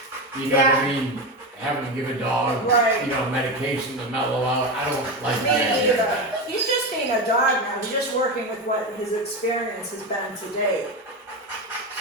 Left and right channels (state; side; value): normal; both; correlation 0.18